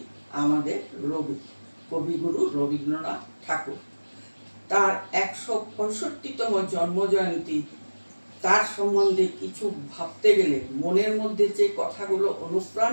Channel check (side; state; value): both; inverted; correlation -1.00